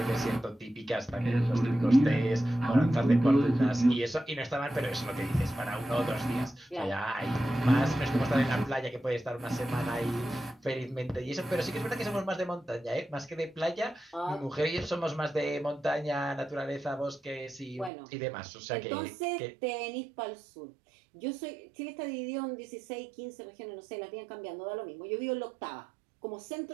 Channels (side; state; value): left; drops out; at 17.9 s